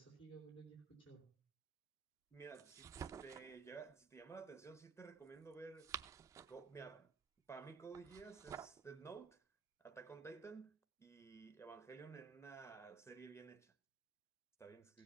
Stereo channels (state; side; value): quieter; left; 5.4 dB